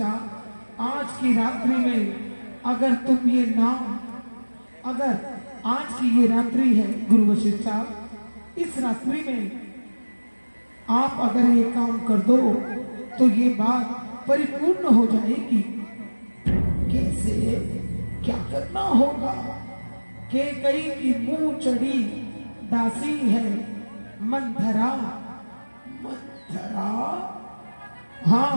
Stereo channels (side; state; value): both; inverted; correlation -1.00